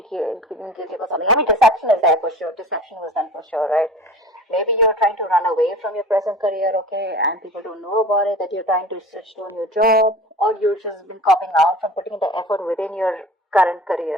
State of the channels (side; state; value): both; normal; correlation 0.39